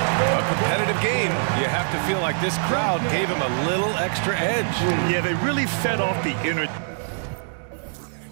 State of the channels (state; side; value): silent; left; 63 dB below the other